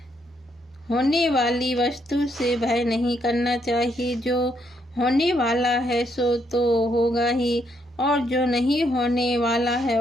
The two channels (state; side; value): normal; both; correlation 0.74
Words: होने वाली वस्तु से भय नहीं करना चाहिए। जो होने वाला है सो तो होगा ही, और जो नहीं होने वाला है